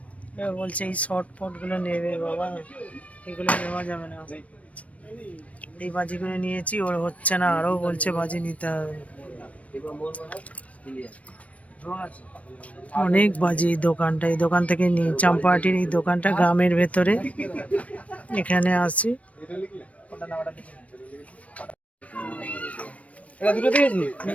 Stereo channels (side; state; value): right; late; 0.066 ms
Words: বলছে এই শর্ট ফট গুলো নেবে বাবা, এগুলো নেওয়া যাবে না। এই বাজিগুলো নিয়েছি, ওর হচ্ছে না, আরো বলছে বাজি নিতে হবে। অনেক বাজি এই দোকানটা, এই দোকান থেকে নিই। চাম্পাহাটির এই দোকানটা গ্রামের ভেতরে, এখানে আসি।